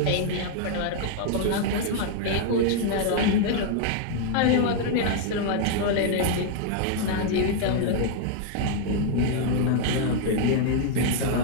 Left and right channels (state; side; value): different; both; correlation 0.00